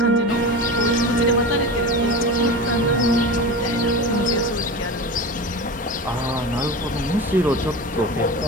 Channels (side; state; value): both; normal; correlation 0.28